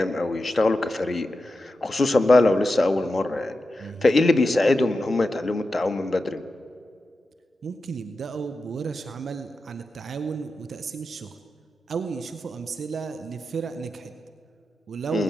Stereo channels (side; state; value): both; normal; correlation 0.91